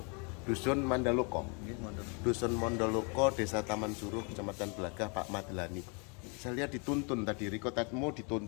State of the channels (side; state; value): right; quieter; 34.7 dB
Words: dusun Mandaloko, Desa Taman Suruh, Kecamatan Belagah, Pak Madlani. Saya lihat dituntun tadi, Riko Tatmo